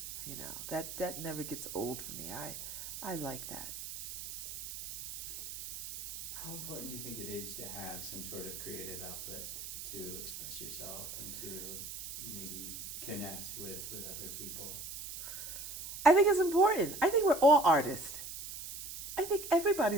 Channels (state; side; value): noise; right; hiss, 8 dB below the sound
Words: You know, that never gets old for me. I like that. How important do you think it is to have some sort of creative outlet to express yourself and to maybe connect with other people? I think it's important. I think we're all artists. I think